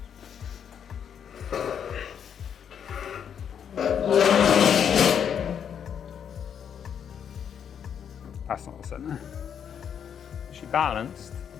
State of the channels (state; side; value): quieter; right; 8.1 dB